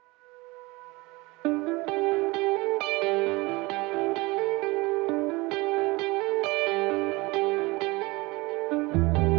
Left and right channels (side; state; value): left; quieter; 23.4 dB